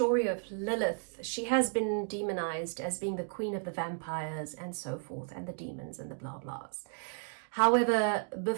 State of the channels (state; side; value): silent; left; 55 dB below the other